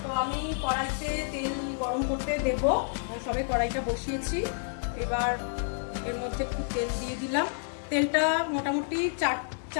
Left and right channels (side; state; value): right; silent; 58 dB below the other